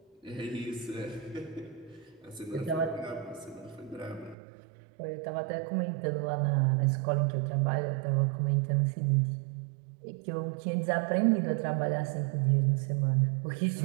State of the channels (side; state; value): left; drops out; at 4.4 s